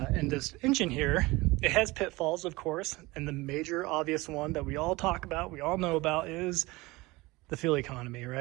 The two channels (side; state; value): left; quieter; 21.7 dB